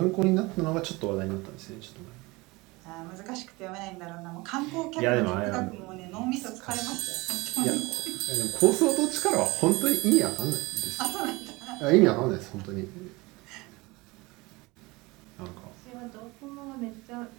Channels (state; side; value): quieter; left; 23.4 dB